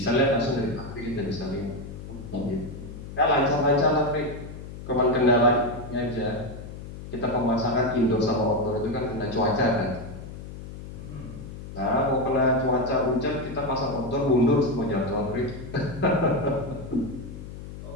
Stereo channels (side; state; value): left; noise; hum, 12 dB below the sound